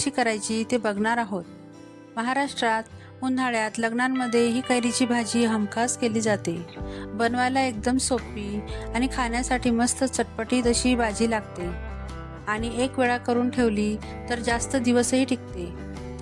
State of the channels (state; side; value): identical; both; correlation 1.00